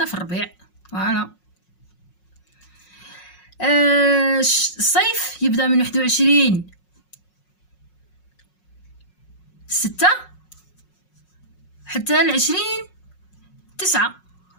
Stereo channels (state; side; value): late; right; 5.5 ms